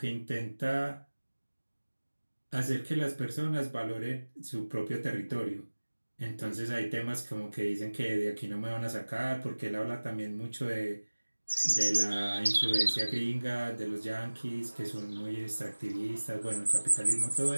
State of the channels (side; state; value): both; inverted; correlation -1.00